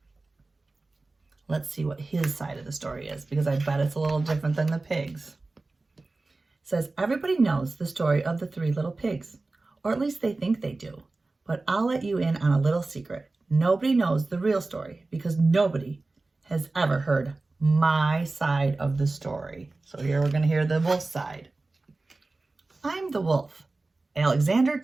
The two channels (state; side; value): quieter; left; 3.3 dB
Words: Let's see what his side of the story is, because I bet it's a little different than the pigs. It says, everybody knows the story of the three little pigs, or at least they think they do, but I'll let you in on a little secret. Nobody knows the real story because nobody has ever heard my side of the story. So here we're going to hear the wolf side. I'm the wolf, Alexander